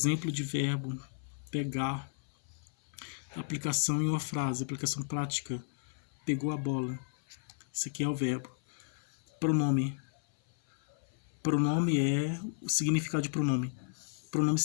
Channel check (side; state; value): right; silent; 55 dB below the other